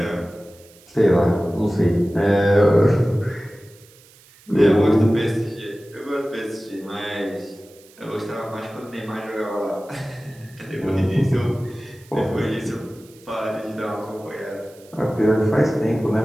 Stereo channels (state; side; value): noise; right; hiss, 26 dB below the sound